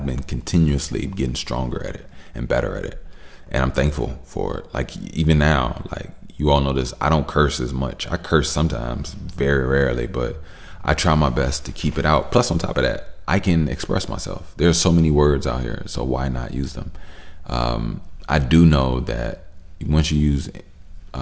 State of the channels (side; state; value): both; identical; correlation 1.00